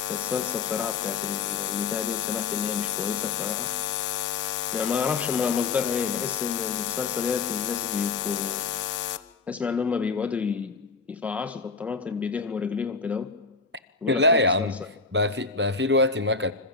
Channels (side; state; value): right; quieter; 4.7 dB